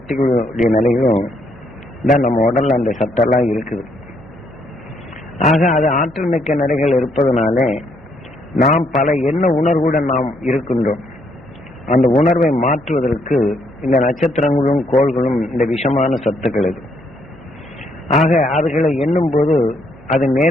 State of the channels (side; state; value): both; normal; correlation 0.72